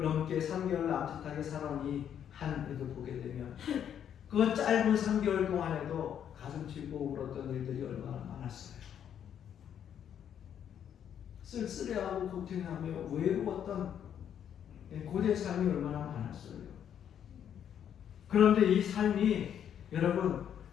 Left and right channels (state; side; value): quieter; right; 9.2 dB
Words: 넘게 3개월 남짓하게 살아온 이 한 해도 보게 되면 그 짧은 3개월 동안에도 가슴 치고 울었던 일들이 얼마나 많았어요. 쓸쓸해하고 고통하며 외로웠던 고된 삶이 얼마나 많았어요. 그런데 이 삶이 여러분